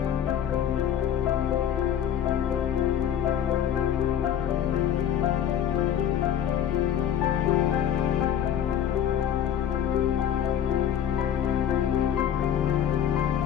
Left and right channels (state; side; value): quieter; right; 9.6 dB